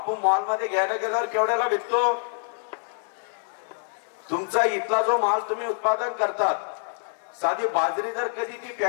मॉल मध्ये घ्यायला गेल्यावर केवढ्याला विकतो? तुमचा इथला जो माल तुम्ही उत्पादन करतात, साधी बाजरी जर कधी ती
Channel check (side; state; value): right; silent; 61 dB below the other